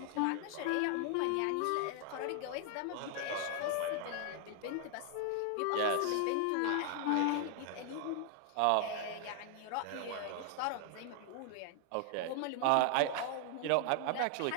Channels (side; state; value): both; different; correlation 0.00